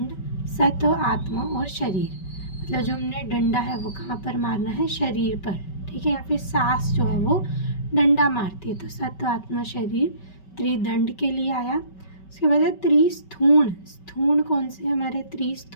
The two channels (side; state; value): right; late; 5.2 ms